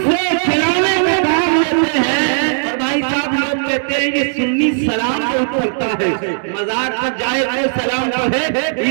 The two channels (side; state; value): left; silent; digital silence